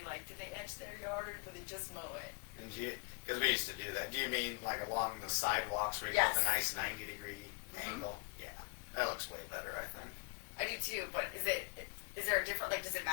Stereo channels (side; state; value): right; quieter; 32.3 dB